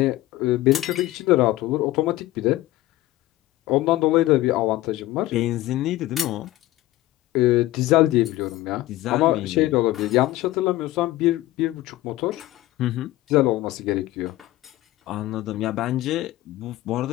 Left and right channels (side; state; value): right; quieter; 16.6 dB